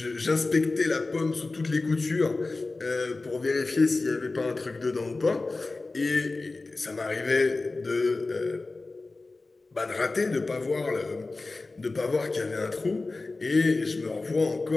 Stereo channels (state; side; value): quieter; right; 3.5 dB